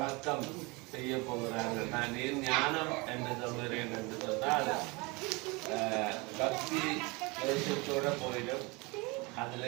செய்ய போகிறார்கள். நான் ஏன் ஞானம் என்று சொல்கிறேன் என்று சொன்னால் பக்தி தேசத்தோட போயிடும். அதுல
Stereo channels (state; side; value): quieter; left; 26.5 dB